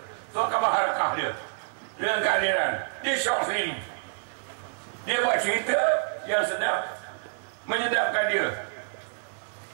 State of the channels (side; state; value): left; silent; 59 dB below the other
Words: surat khabar harakah dia dengan keadilan. Dia syok sendiri. Dia buat cerita yang sedap, menyedapkan dia.